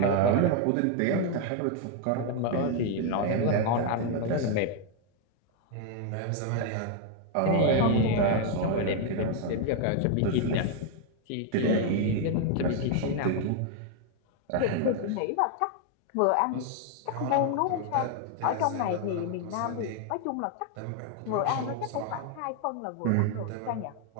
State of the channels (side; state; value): both; different; correlation 0.00